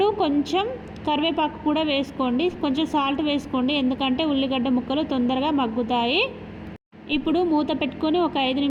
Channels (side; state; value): both; identical; correlation 1.00